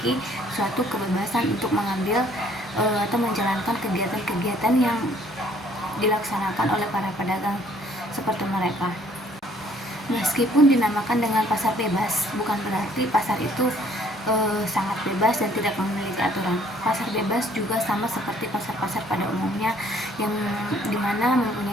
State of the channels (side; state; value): both; normal; correlation 0.60